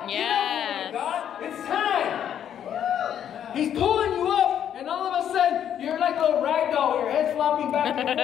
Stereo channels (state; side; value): quieter; right; 9.6 dB